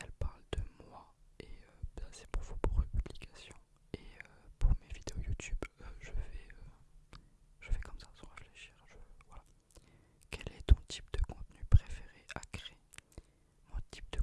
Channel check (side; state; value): both; identical; correlation 1.00